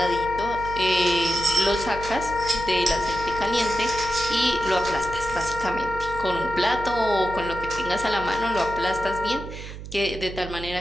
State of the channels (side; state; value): right; noise; hum, 11 dB below the sound